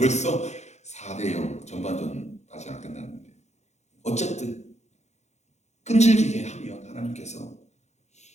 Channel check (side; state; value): right; late; 0.33 ms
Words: 4대 0 전반전 아직 안 끝났는데, 어쨌든 끈질기게 하면 하나님께서